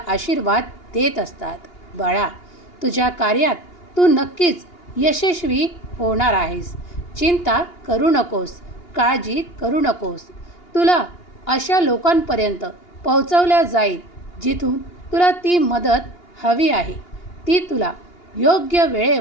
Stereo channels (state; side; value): late; right; 2.8 ms